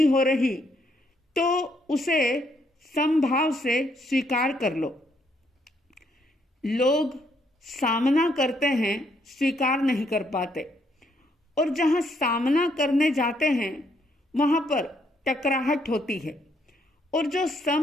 हो रही, तो उसे समभाव से स्वीकार कर लो। लोग सामना करते हैं, स्वीकार नहीं कर पाते, और जहां सामना करने जाते हैं वहां पर टकराहट होती है। और जो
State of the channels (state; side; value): normal; both; correlation 0.72